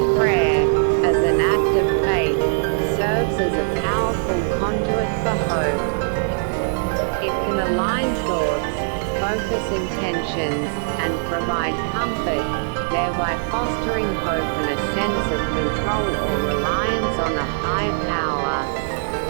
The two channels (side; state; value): left; silent; digital silence